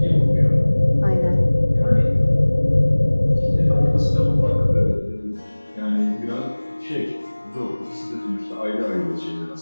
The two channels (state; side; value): inverted; both; correlation -1.00